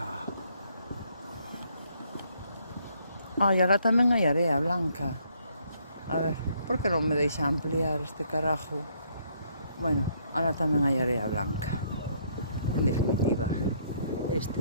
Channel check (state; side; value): inverted; both; correlation -0.68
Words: Ai, ahora tamén hai area blanca. A ver, por que non me deixa ampliar este carajo? Bueno, ahora tamén hai area blanca. En definitiva,